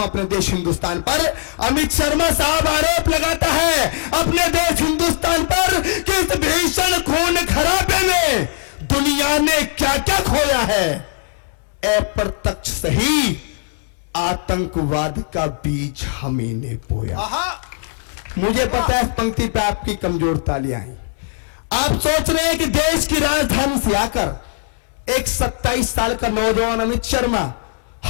हूं अपने देश हिंदुस्तान पर। अमित शर्मा साहब आरोप लगाता है अपने देश हिंदुस्तान पर कि इस भीषण खून खराबे में दुनिया ने क्या क्या खोया है। अप्रत्यक्ष सही आतंकवाद का बीज हमें ने बोया। मुझे पता है इस पंक्ति पे आपकी कमजोर तालियां आई। आप सोच रहे हैं कि देश की राजधानी से आकर एक 27 साल का नौजवान अमित शर्मा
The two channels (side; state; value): right; silent; digital silence